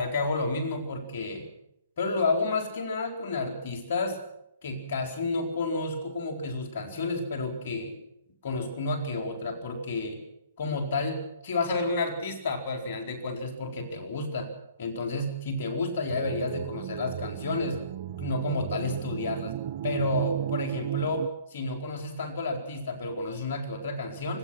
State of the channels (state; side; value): inverted; both; correlation -0.56